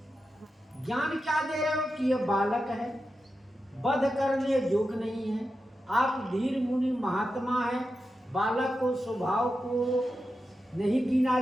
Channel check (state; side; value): normal; both; correlation 0.90